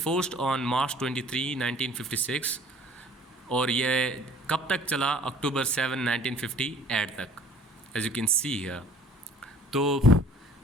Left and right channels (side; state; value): both; normal; correlation 0.52